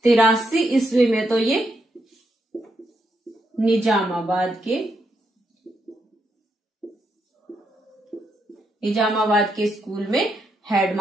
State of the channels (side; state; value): both; normal; correlation 0.80